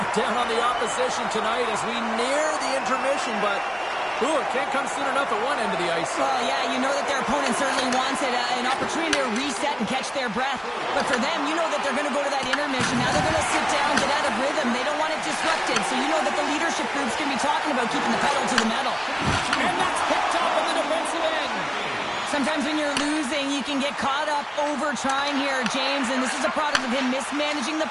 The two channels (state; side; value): identical; both; correlation 1.00